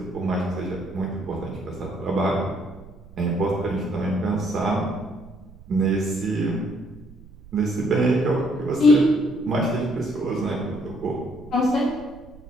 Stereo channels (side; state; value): right; noise; rumble, 20 dB below the sound